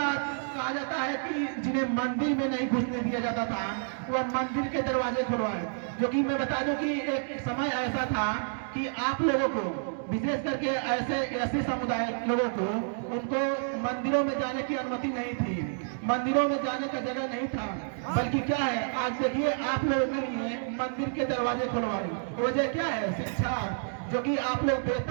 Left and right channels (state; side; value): silent; left; digital silence